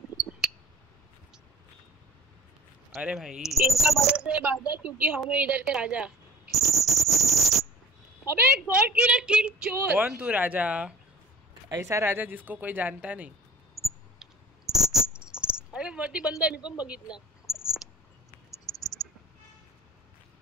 अरे भाई इनका बजाते बाजा क्योंकि हम इधर के राजा. अबे गॉड किलर किल चोर. कौन तू राजा? ऐसा राजा जिसको कोई जानता नहीं. अरे वरती बंदा मी पण बघितला.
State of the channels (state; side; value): normal; both; correlation 0.48